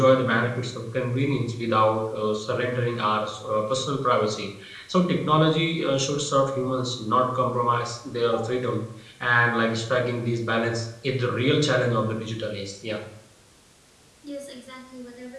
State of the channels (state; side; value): identical; both; correlation 1.00